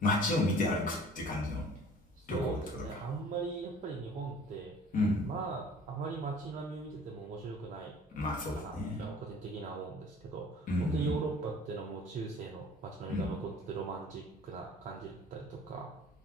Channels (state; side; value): normal; both; correlation 0.49